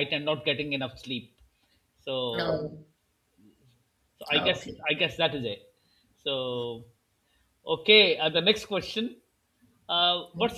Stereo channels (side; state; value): both; identical; correlation 1.00